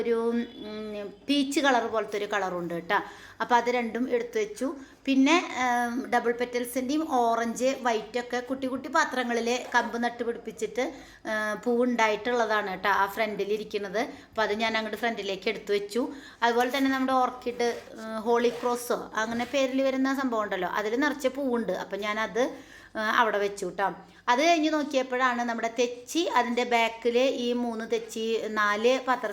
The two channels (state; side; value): identical; both; correlation 1.00